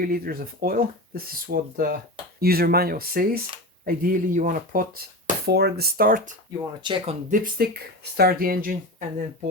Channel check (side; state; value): both; normal; correlation 0.25